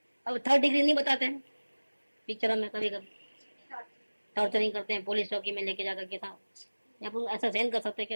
अब 3rd डिग्री नहीं बताते हैं पिक्चरों में, कभी कभी टॉर्चरिंग करते हैं, पुलिस चौकी में लेके जाकर के था, अपन ऐसा सहन कर सकते?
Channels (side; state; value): both; inverted; correlation -1.00